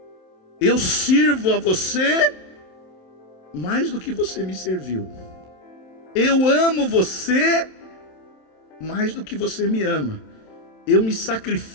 Eu sirvo a você mais do que você me serviu. Eu amo você mais do que você me ama. Eu me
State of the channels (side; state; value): right; late; 27 ms